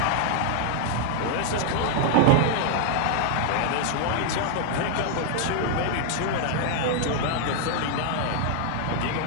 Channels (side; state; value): both; different; correlation 0.00